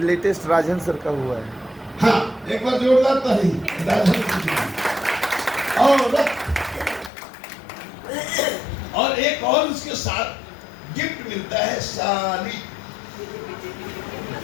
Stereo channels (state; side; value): drops out; right; at 7.1 s